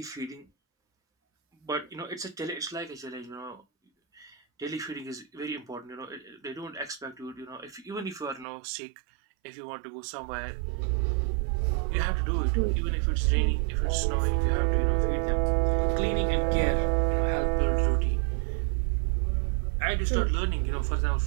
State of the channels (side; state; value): left; drops out; at 8.5 s